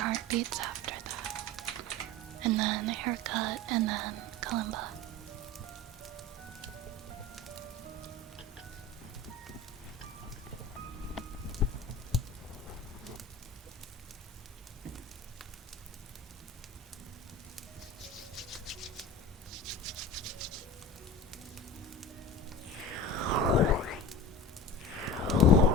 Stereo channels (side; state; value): both; normal; correlation 0.34